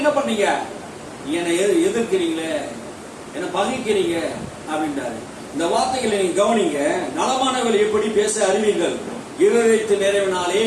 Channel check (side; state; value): both; identical; correlation 1.00